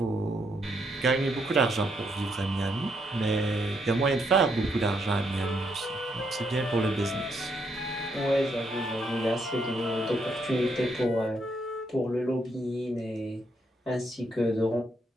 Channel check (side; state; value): both; normal; correlation 0.75